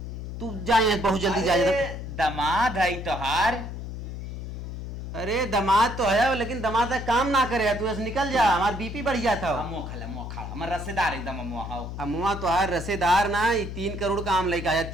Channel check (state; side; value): noise; left; hum, 7 dB below the sound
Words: तू जाए बहुत जल्दी जा। दमाद है तोहार। अरे दामाद तो है लेकिन दामाद का काम ना करे, तू ऐसे निकल जा, हमारा बीपी बढ़ जाता हो। मोखा हमार रसेदार एकदम अमुआ तो है रसेदार ना, 3 करोड़ का आम लेके आया